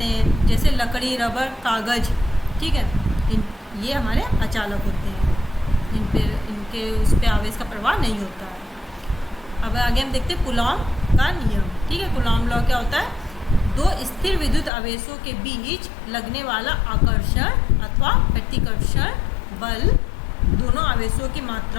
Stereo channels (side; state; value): right; drops out; at 14.7 s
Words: हैं। जैसे लकड़ी, रबर, कागज, ठीक है, ये हमारे अचालक होते हैं, इनके उस पर आवेश का प्रवाह नहीं होता है। अब आगे हम देखते हैं कूलॉम का नियम, ठीक है। कूलॉम लॉ क्या होता है? दो स्थिर विद्युत आवेशों के बीच लगने वाला आकर्षण अथवा प्रतिकर्षण बल दोनों आवेशों की